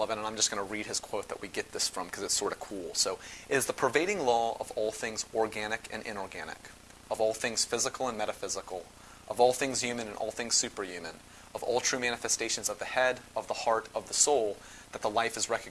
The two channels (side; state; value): both; identical; correlation 1.00